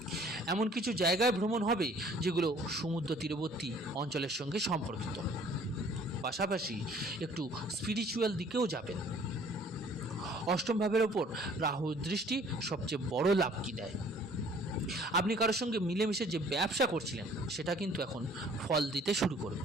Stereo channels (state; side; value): normal; both; correlation 0.55